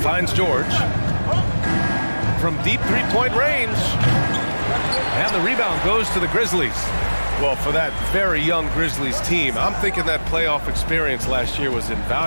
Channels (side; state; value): both; inverted; correlation -1.00